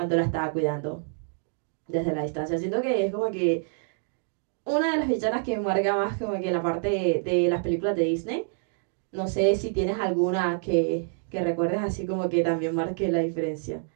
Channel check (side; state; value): left; silent; digital silence